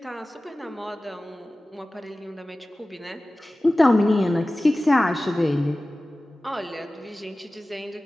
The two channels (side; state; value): both; normal; correlation 0.97